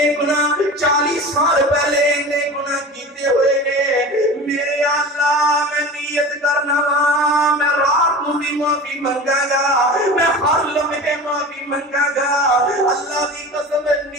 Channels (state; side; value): normal; both; correlation 0.34